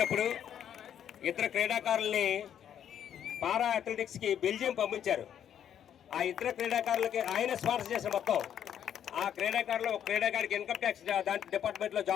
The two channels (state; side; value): quieter; right; 9.6 dB